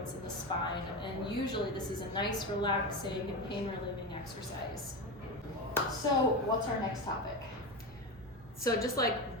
and the spine, and usually this is a nice, relaxing, and pain-relieving exercise. So what's our next topic? So just like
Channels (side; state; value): both; normal; correlation 0.20